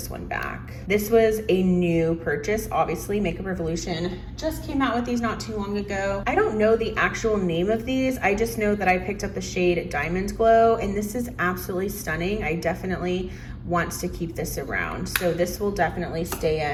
one back. This was a new purchase. Obviously, Makeup Revolution just came out with these not too long ago. I don't know the actual name of these. I just know that I picked up the shade Diamond Glow, and this is absolutely stunning. I definitely want to keep this around. So this will definitely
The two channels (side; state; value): both; identical; correlation 1.00